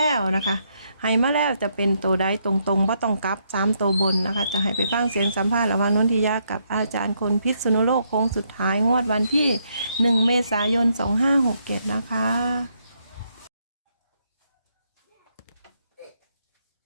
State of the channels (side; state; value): both; inverted; correlation -0.75